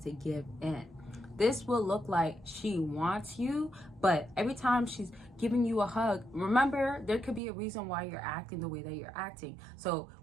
give in. This will look like she wants you, but every time she's giving you a hug, remember, there could be a reason why you're acting the way that you're acting. So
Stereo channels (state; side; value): drops out; left; at 7.4 s